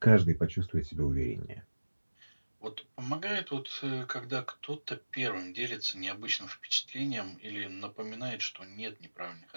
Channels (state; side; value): inverted; both; correlation -1.00